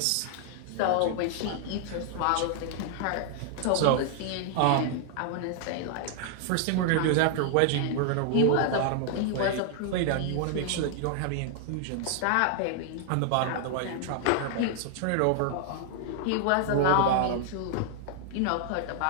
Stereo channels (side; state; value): both; different; correlation 0.00